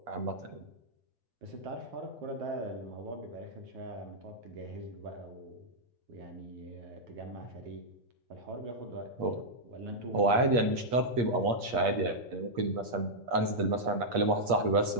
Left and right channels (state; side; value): late; left; 8.4 ms